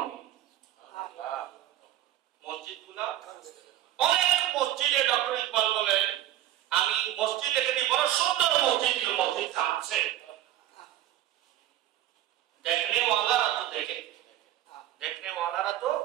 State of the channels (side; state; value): left; quieter; 13.1 dB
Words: মসজিদগুলা অনেক মসজিদে, ডক্টর ইকবাল বলেন আমি মসজিদ দেখেছি, বড় সুন্দর মসজিদ, মসজিদ কাঁদছে। देखने वाला तो देखे, देखने वाला तो